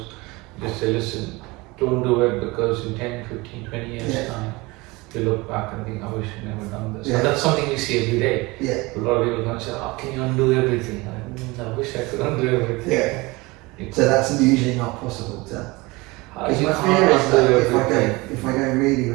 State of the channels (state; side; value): quieter; left; 23.4 dB